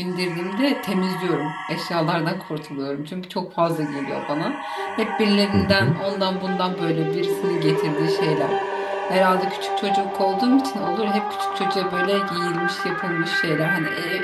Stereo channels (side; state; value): both; identical; correlation 1.00